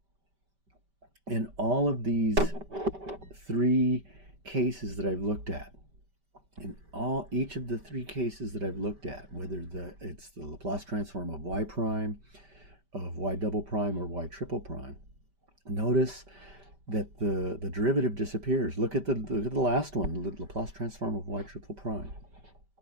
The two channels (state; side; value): late; left; 5.1 ms